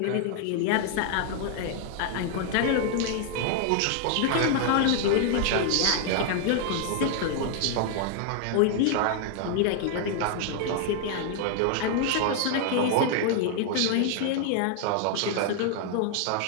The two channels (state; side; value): different; both; correlation 0.00